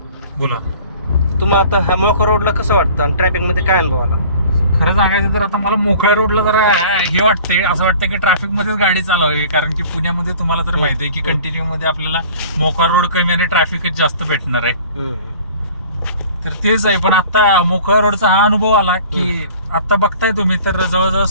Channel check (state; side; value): inverted; both; correlation -0.47